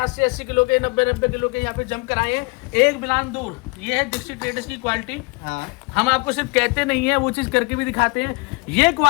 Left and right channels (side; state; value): right; quieter; 29.2 dB